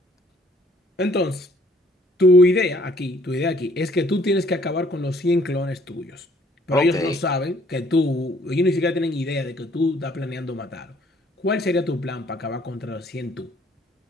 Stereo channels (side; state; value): both; normal; correlation 0.61